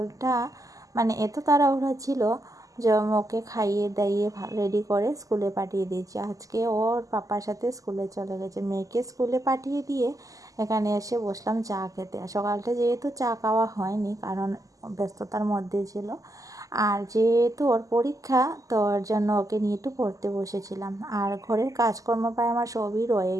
মানে এত তাড়াহুড়া ছিল যে ওকে খাইয়ে দাইয়ে রেডি করে স্কুলে পাঠিয়ে দিয়েছি। আজকে ওর পাপার সাথে স্কুলে চলে গেছে। মেয়েকে স্কুলে পাঠিয়ে দিয়ে এখানে এসে বসলাম চা খেতে। সকালটা যেহেতু চা খাওয়া হয়নি, কারণ ব্যস্ততার মধ্যে ছিল, আর যেহেতু ওর পরীক্ষা, তো ওর জন্য ওকে নিয়ে একটু পড়তে বসেছিলাম। আর ঘরের কাজকর্ম প্রায় আমার সবই রয়ে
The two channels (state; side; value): late; left; 0.17 ms